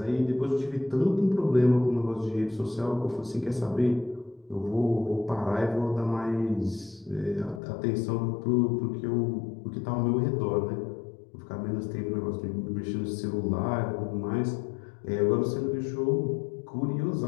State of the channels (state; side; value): drops out; right; at 7.6 s